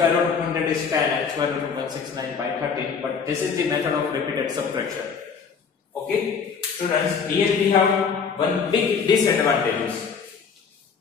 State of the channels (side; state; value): right; quieter; 6.0 dB